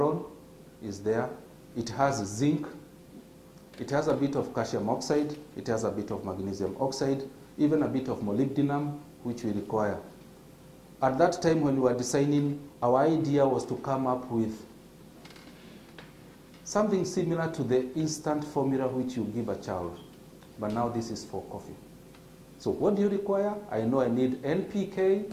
is there, it has zinc, it has a bit of calcium oxide, it has a bit of magnesium oxide, even a bit of molybdenum, which we require. At that time when we were designing, our idea was to come up with something similar to the instant formula which you give a child. But now this is for coffee. So what do you require? I know I need NPK,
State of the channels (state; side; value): identical; both; correlation 1.00